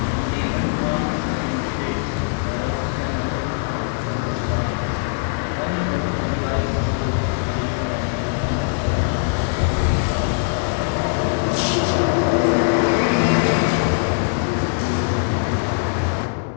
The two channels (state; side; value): silent; right; digital silence